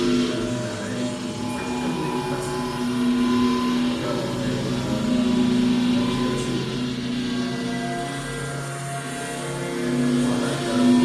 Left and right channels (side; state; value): both; identical; correlation 1.00